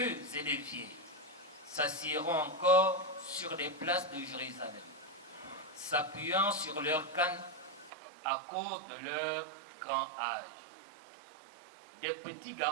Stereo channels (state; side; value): drops out; left; at 7.9 s